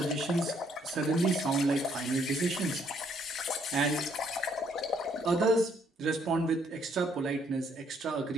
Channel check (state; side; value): normal; both; correlation 0.68